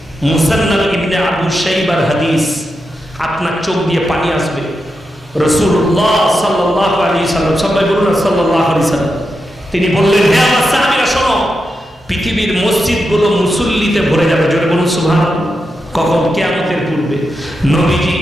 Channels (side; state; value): both; normal; correlation 0.87